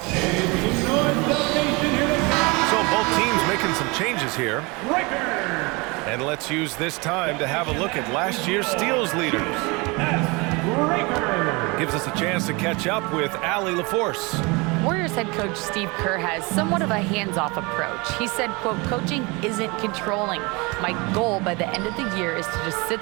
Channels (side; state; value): left; quieter; 26.9 dB